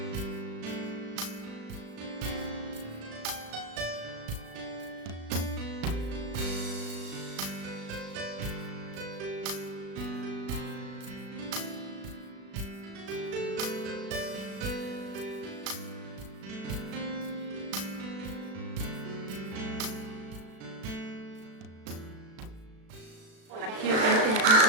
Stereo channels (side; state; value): left; late; 36 ms